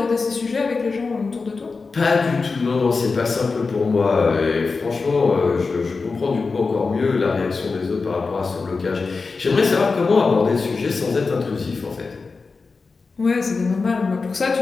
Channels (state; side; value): quieter; right; 4.3 dB